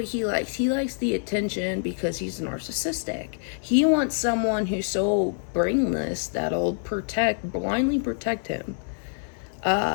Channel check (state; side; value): silent; right; 55 dB below the other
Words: he likes. He likes the attention because he's narcissistic. He wants someone who's so brainless that'll blindly protect him,